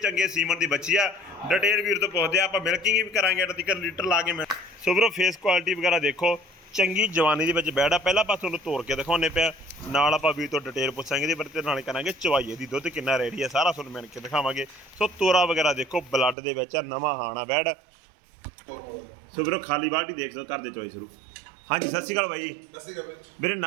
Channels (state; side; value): drops out; left; at 16.4 s